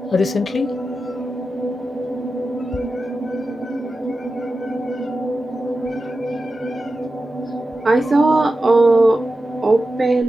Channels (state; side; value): normal; both; correlation 0.92